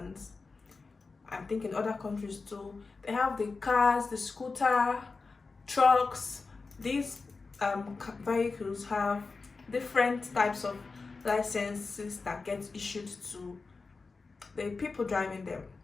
I think in other countries too. They have the cars, the scooter, trucks. These vehicles have different types of licenses that get issued to the people driving them.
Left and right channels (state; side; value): quieter; right; 4.2 dB